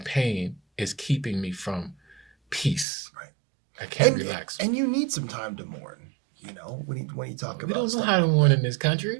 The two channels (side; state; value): left; drops out; at 2.9 s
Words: is keeping me from peace. Right. I can't relax. And you need some time to mourn, you know, when you talk about We don't know how to mourn in this